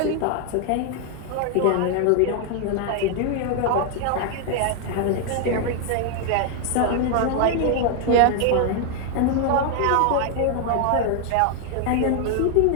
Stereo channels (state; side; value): different; both; correlation 0.00